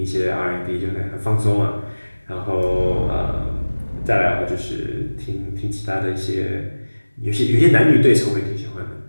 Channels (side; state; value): both; inverted; correlation -1.00